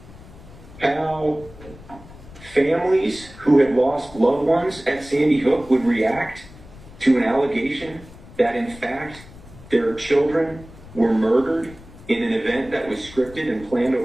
how families who had lost loved ones at Sandy Hook would react to an allegation that, in fact, their children were murdered in an event that was scripted and planned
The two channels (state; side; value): noise; left; rumble, 19 dB below the sound